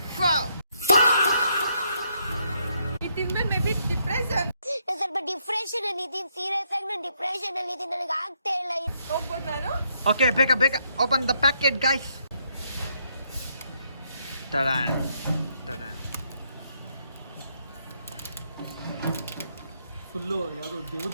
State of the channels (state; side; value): inverted; both; correlation -0.74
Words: ಇದ್ಮೇಲೆ ಮೇ ಬಿ ಡಿಪ್ರೆಷನ್. ಸ್ವಲ್ಪ ಡಿಪ್ರೆಷನ್ ಅಲ್ಲಿ ಇದೀನಿ. ಸೀರಿಯಸ್ ಆಗಿ ನಾನು ಡಿಪ್ರೆಷನ್ ಅಲ್ಲಿ ಇದೀನಿ. ನನಗೆ ಆಗ್ತಾ ಇಲ್ಲ. ಹೋಗ್ಬೋದು ನಾನು? ಓಕೆ ಬೇಗ ಓಪನ್ ದ ಪ್ಯಾಕೆಟ್ ಗೈಸ್. ತಡಾನ್ ಫುಲ್ಲು ಯಾವ್ದು